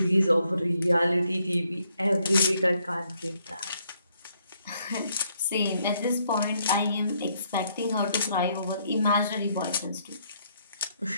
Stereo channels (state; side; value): inverted; both; correlation -0.72